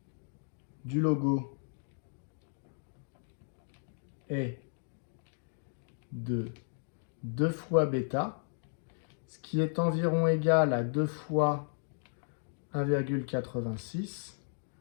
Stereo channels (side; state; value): right; silent; digital silence